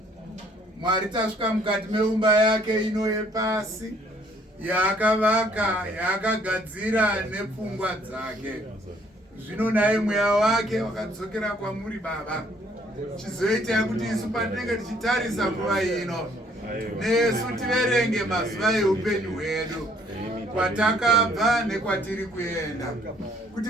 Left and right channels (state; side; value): normal; both; correlation 0.63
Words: Mwari, tasvika mukati meumba yake ino yepasi yaakavaka, yaakagadzira nepfungwa dzake. Zvino naye mweya wake wakadzokera kwamuri Baba, chizoita kuti isu patinenge tichitarisa nguva ino nesu tiverenge mazuva eupenyu hwedu kwatakabva nekwatiri kuenda, kuti